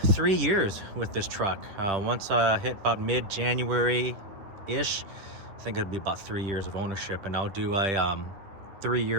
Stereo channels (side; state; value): left; late; 9.9 ms